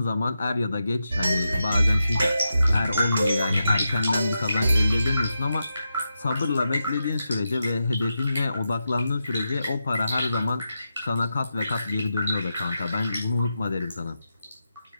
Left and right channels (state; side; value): inverted; both; correlation -0.88